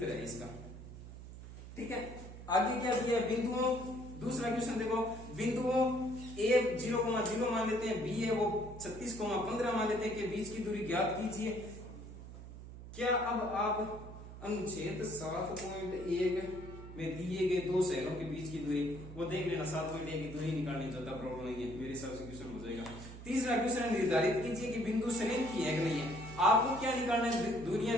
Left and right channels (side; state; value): right; noise; hum, 13 dB below the sound